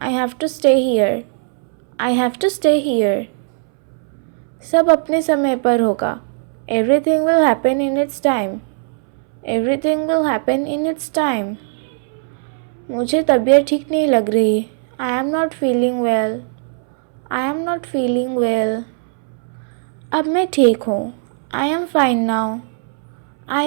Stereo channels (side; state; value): left; silent; 65 dB below the other